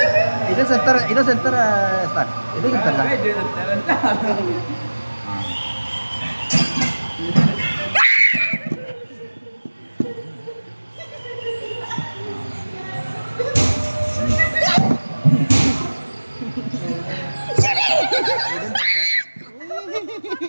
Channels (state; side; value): inverted; both; correlation -1.00